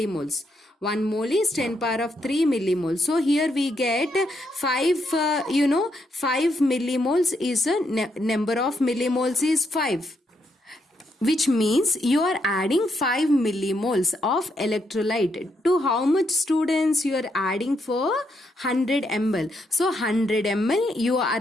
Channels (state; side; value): normal; both; correlation 0.78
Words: 1 mole is 10 power of 3 millimoles. So here we get 5, 5 millimoles is a number of millimoles is 5. Which means you are adding 5 millimoles of electrolyte. To how much, students? You are adding for 100 ml. So 100 ml you